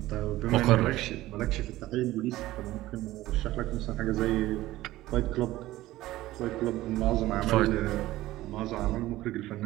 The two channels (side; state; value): left; quieter; 16.4 dB